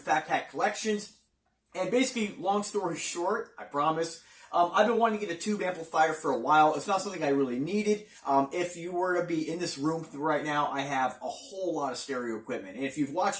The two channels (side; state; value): both; identical; correlation 1.00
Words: Fat Cat Collections. And basically, long story short, I promise, I've been wanting to get a tube amplifier for a while. It's not something I really needed. If you were to be in this room right now, I have a whole lot of stereo equipment. And if you've watched